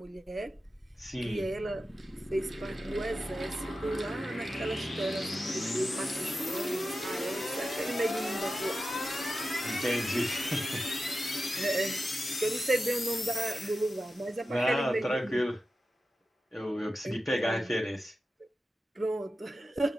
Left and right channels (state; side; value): normal; both; correlation 0.92